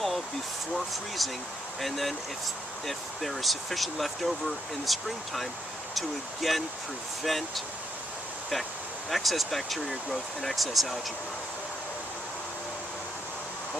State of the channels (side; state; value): both; normal; correlation 0.75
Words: before freezing, and then if there is sufficient left over in the springtime, to again prevent excess bacteria growth and excess algae growth.